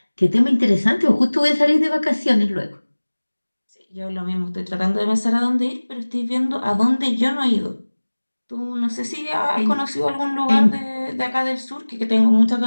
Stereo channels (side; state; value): both; inverted; correlation -1.00